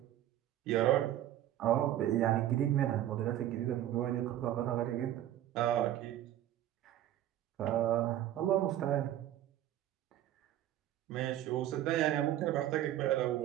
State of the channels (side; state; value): left; quieter; 12.6 dB